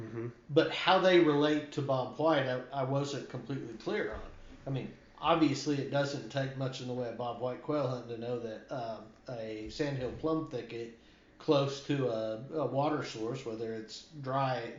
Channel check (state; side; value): identical; both; correlation 1.00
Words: But how they relate to Bob White, I wasn't completely clear on. I mean, obviously it doesn't take much in the way of Bob White quail hunting to know that a sandhill plum thicket close to a water source, whether it's dry